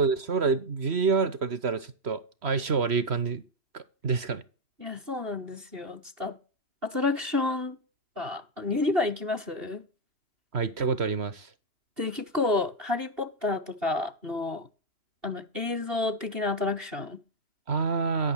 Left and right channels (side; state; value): left; late; 2.8 ms